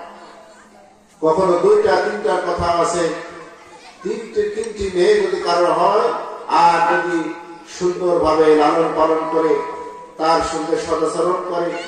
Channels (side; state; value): both; identical; correlation 1.00